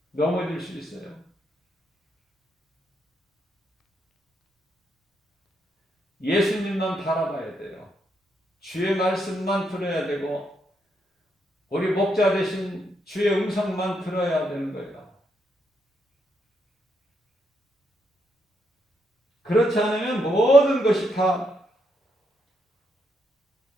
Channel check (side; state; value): both; normal; correlation 0.78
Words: 넘어질 수 있어요. 예수님만 바라봐야 돼요. 주의 말씀만 들어야 되고 우리 목자 되신 주의 음성만 들어야 되는 거예요. 그렇지 않으면 모든 것이 다